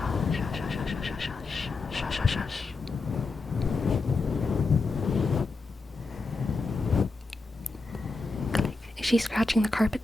Is she scratching the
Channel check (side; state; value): right; quieter; 3.7 dB